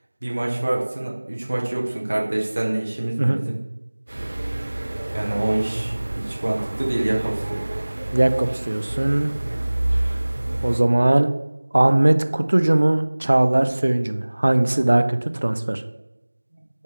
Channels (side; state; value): both; inverted; correlation -1.00